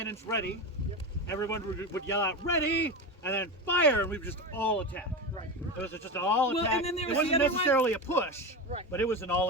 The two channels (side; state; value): both; normal; correlation 0.21